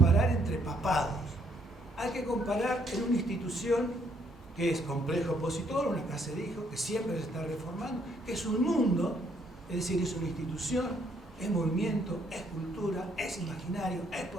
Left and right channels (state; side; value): normal; both; correlation 0.69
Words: entre papados. Hay que comparar en una institución que es complejo opositor, una que se dijo, que siempre se está reformando, que es un mundo, es decir, es una institución es movimiento, es cultura, es imaginario, es